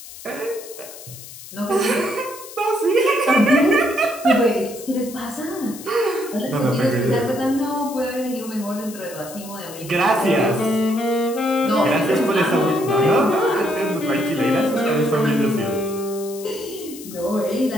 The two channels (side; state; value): left; noise; hiss, 15 dB below the sound